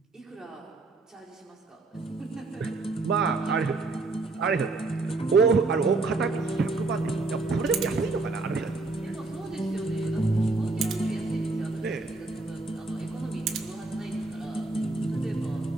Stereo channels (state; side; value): quieter; left; 3.5 dB